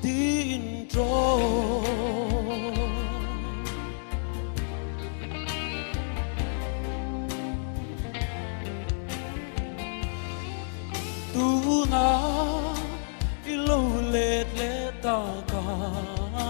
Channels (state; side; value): silent; right; digital silence